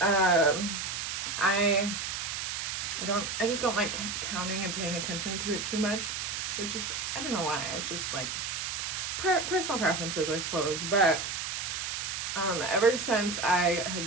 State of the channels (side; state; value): right; noise; hiss, 3 dB below the sound